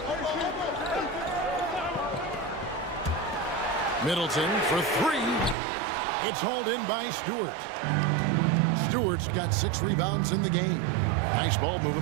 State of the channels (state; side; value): drops out; left; at 5.6 s